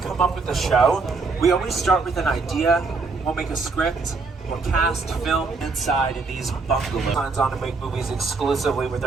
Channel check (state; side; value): quieter; left; 4.2 dB